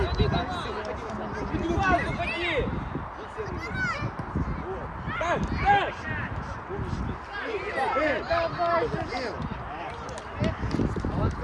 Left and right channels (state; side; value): identical; both; correlation 1.00